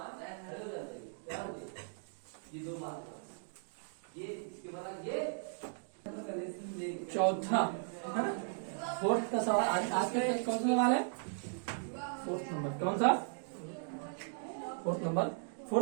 चौथा है ना, फोर्थ का सवाल आज के कौन सा सवाल है, फोर्थ नंबर, कौन सा, फोर्थ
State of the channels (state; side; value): silent; left; digital silence